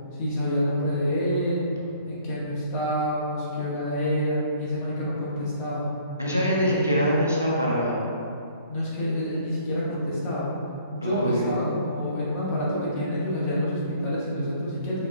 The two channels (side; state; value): both; inverted; correlation -0.58